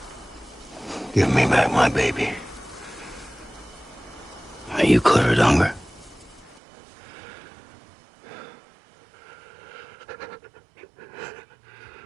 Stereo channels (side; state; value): left; drops out; at 6.6 s